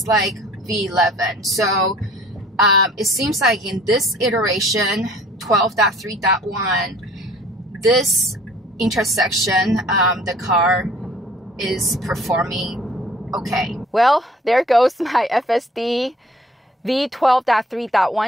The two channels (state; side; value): normal; both; correlation 0.53